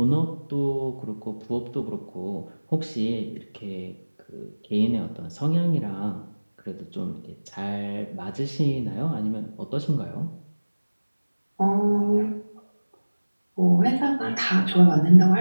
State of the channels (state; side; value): inverted; both; correlation -1.00